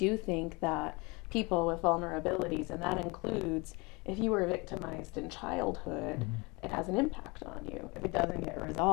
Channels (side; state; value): right; quieter; 26.8 dB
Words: think that people with vulnerabilities, and that includes if you were victimized in childhood, it has an impact on you. If it doesn't get